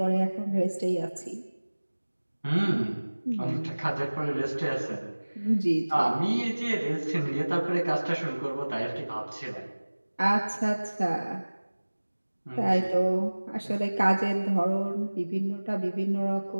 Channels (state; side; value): inverted; both; correlation -1.00